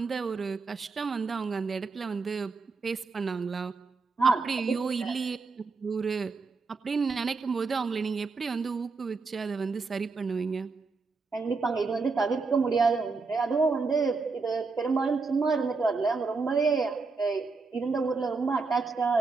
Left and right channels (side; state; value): left; quieter; 4.3 dB